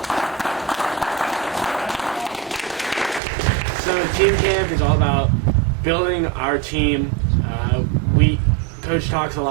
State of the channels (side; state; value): left; drops out; at 3.2 s